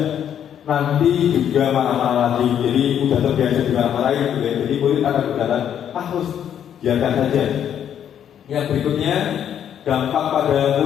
nanti juga marah-marah lagi. Jadi udah terbiasa dimarah-marahin, gitu ya. Jadi murid akan berkata, harus biarkan saja. Yang berikutnya, dampak pada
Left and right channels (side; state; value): right; quieter; 9.5 dB